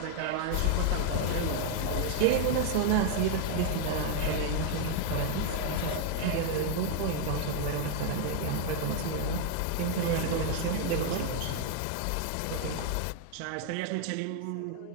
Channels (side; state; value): both; different; correlation 0.00